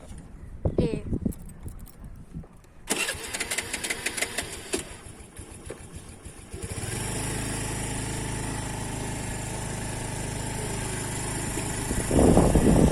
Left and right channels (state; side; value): identical; both; correlation 1.00